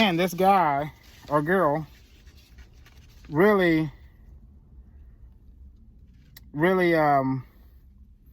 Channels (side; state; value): both; identical; correlation 1.00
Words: this guy or girl really